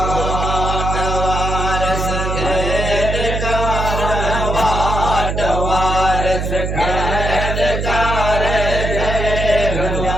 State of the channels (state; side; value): noise; right; hum, 2 dB below the sound